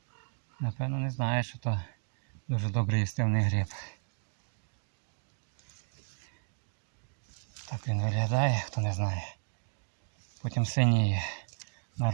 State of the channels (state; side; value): silent; left; 56 dB below the other